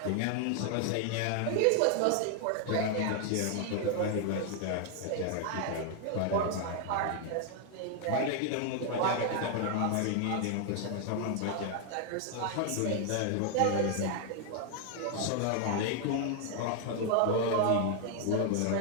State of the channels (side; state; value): both; different; correlation 0.00